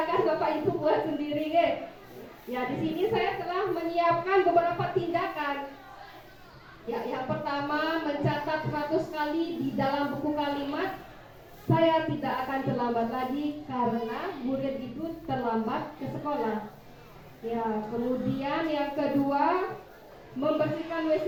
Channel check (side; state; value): both; identical; correlation 1.00